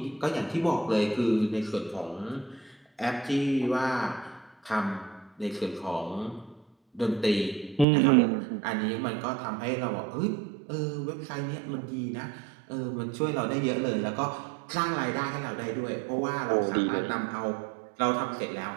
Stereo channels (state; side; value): drops out; left; at 7.9 s